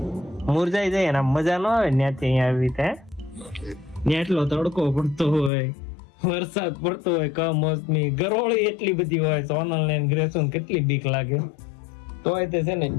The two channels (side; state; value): right; drops out; at 5.5 s